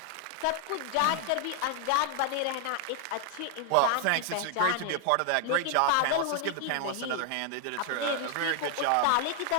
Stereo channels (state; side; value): different; both; correlation 0.00